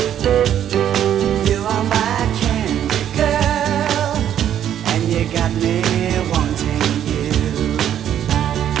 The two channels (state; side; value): quieter; left; 10.3 dB